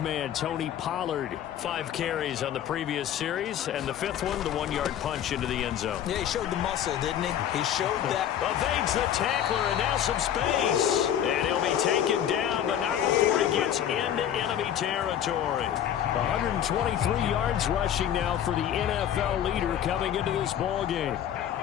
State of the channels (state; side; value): quieter; right; 10.2 dB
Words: Tony Pollard. 5 carries on the previous series, and the 5th one, the 1-yard punch into the end zone. Yeah, he showed the muscle, didn't he? He showed that. Evades the tackler, and now some space. And he'll be taken down, but not before he gets into enemy territory. 123 yards rushing now for the NFL leader coming into this ball game.